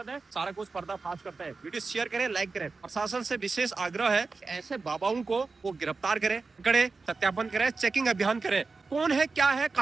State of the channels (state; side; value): quieter; left; 4.1 dB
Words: है। सारा कुछ पर्दाफाश करता है। वीडियो शेयर करें, लाइक करें। प्रशासन से विशेष आग्रह है कि ऐसे बाबाओं को वो गिरफ्तार करें, पकड़े, सत्यापन करें, चेकिंग अभियान करें, कौन है, क्या है,